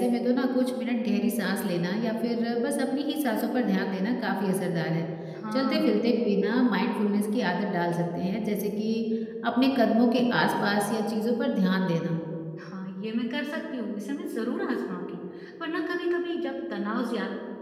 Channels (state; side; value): identical; both; correlation 1.00